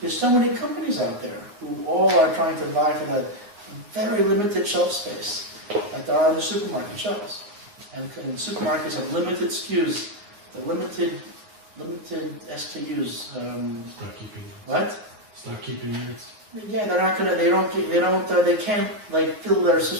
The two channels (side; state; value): left; late; 9.8 ms